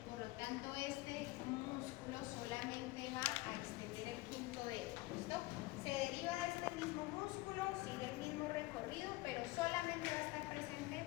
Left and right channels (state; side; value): quieter; right; 20.6 dB